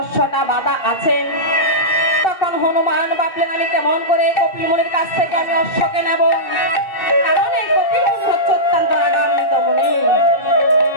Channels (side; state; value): right; late; 2.7 ms